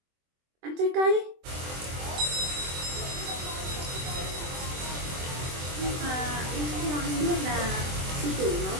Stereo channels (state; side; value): late; left; 24 ms